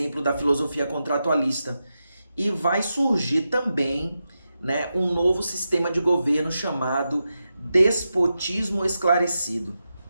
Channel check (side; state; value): both; inverted; correlation -0.89